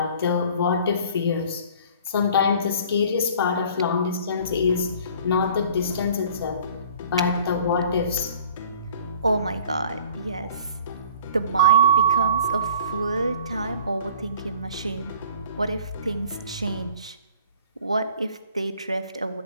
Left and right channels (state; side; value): inverted; both; correlation -0.50